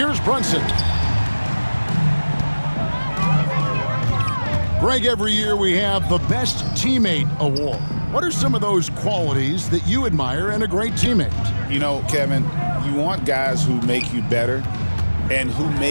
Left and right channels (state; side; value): inverted; both; correlation -1.00